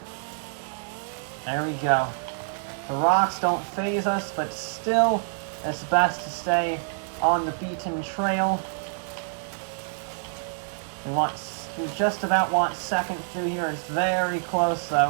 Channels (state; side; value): silent; left; digital silence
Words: There we go. The rocks don't faze us, but still, it's best to stay on the beaten trail. We just about want second through here. It's very close,